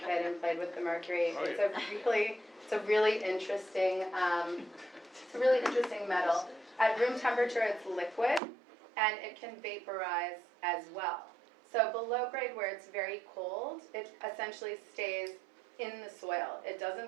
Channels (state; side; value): drops out; left; at 8.4 s